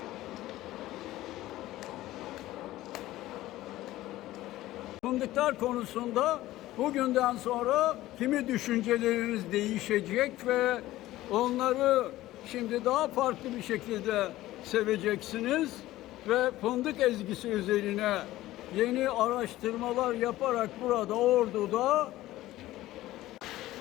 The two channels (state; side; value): quieter; right; 16.0 dB